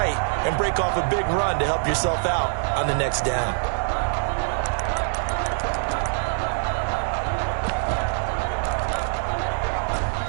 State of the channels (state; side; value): silent; left; digital silence